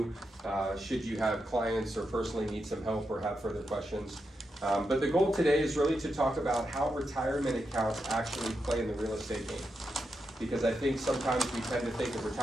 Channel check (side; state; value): both; normal; correlation 0.86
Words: should you have clients or personally need some help or have further questions. But the goal today is really to talk about how retirement accounts actually play in the real estate game. Because I think sometimes we tend to think of